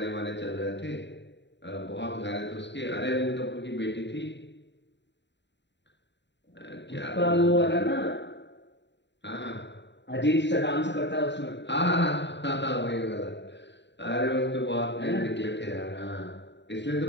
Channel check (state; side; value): late; right; 0.52 ms